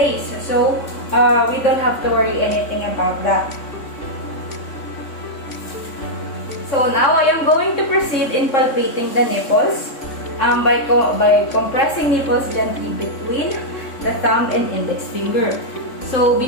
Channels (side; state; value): right; late; 3.5 ms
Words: So we don't have to worry anything about that. So now I am going to proceed in palpating the nipples by compressing nipples gently between the thumb and index finger. So